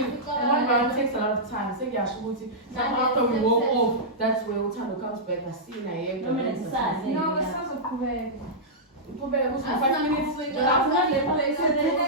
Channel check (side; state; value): both; normal; correlation -0.12